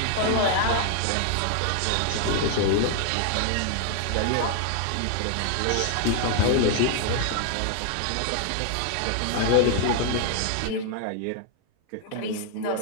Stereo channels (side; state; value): both; different; correlation 0.00